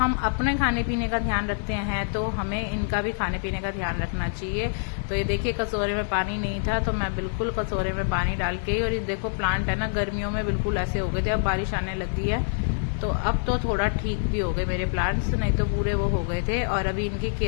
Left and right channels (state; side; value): silent; right; 59 dB below the other